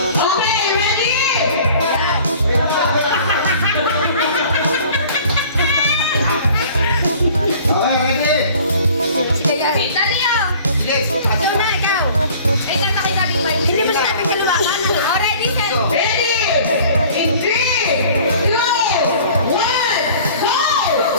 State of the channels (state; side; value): inverted; both; correlation -0.49